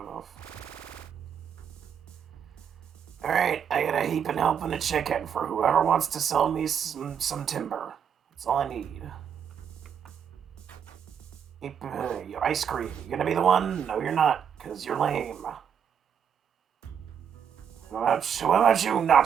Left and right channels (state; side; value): quieter; left; 8.0 dB